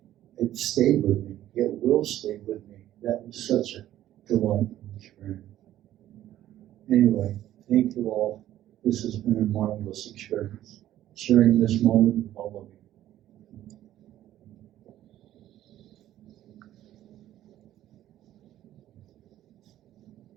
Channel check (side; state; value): left; quieter; 13.0 dB